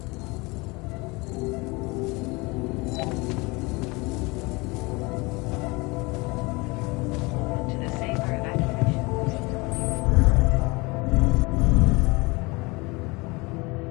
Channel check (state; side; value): quieter; right; 25.4 dB